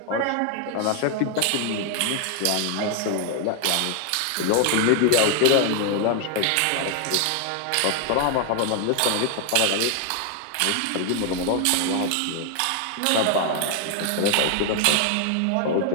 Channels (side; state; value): both; different; correlation 0.00